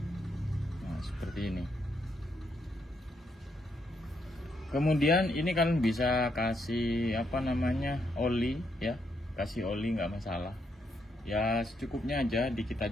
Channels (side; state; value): both; normal; correlation 0.77